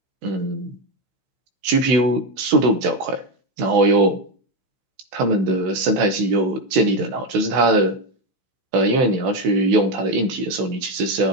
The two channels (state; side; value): late; left; 16 ms